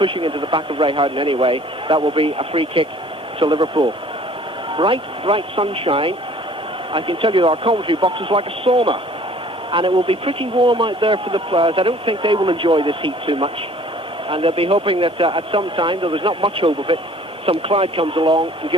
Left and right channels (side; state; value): both; normal; correlation 0.53